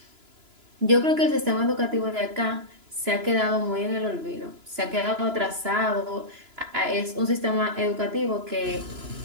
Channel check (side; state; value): left; late; 2.9 ms